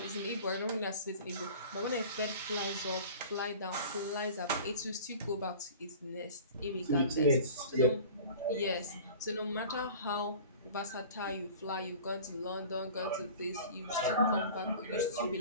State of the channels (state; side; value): inverted; both; correlation -0.41